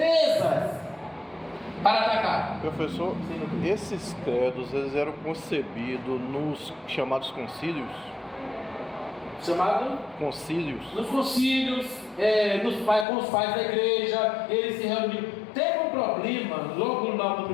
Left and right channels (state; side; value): drops out; right; at 13.1 s